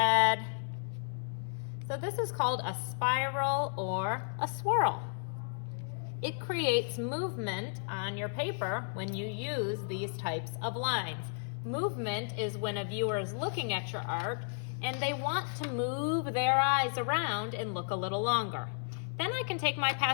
So this is called a spiral or a swirl. It creates movement on your paper when you use these types of lines. Movement is when a viewer is looking at your art and they want to move their eyes around and look a little longer. Then I can take my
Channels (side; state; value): right; silent; 56 dB below the other